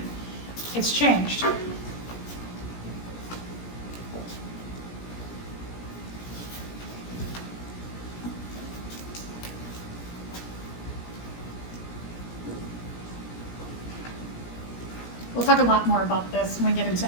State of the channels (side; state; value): right; late; 17 ms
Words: It's changed. We'll talk a lot more about this when we get into